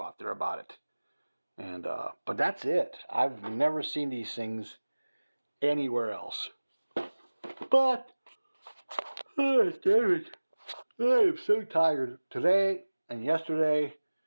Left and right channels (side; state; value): both; inverted; correlation -1.00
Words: out there about it. And but that's it. I've never seen these things anywhere else. But David, I am so tired. Today and yesterday